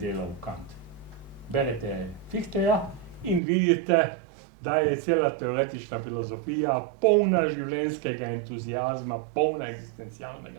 Kant. Berete Fichteja in vidite, da je cela teoretična filozofija polna življenjskega entuzijazma, polna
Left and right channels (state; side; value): drops out; left; at 3.4 s